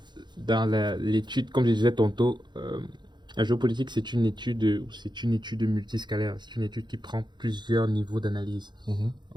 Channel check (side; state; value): left; late; 0.21 ms